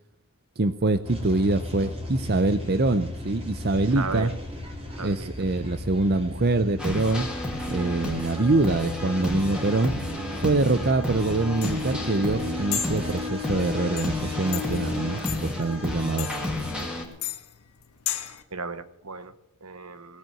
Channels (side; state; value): both; normal; correlation 0.51